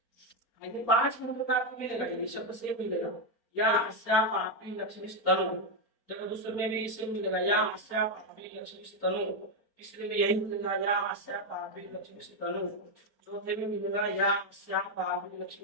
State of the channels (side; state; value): right; late; 4.3 ms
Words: ये 5 मंत्र का आपको मिलेगा, ये शब्द से मिलेगा या अस्याः पापी लक्ष्मी तनु। देखो दूसरे में भी इसे मिलेगा या अस्याः पापी लक्ष्मी तनु, तीसरे में यही मिलेगा या अस्याः पापी लक्ष्मी तनु, चौथे में मिलेगा या अस्या पापी